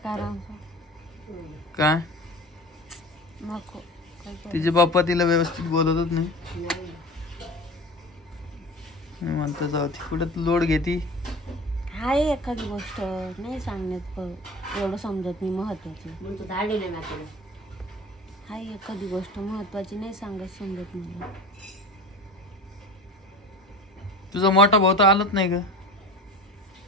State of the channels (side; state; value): both; normal; correlation 0.36